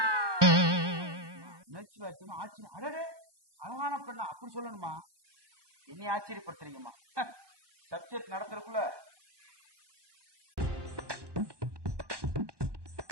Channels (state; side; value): late; left; 1.2 ms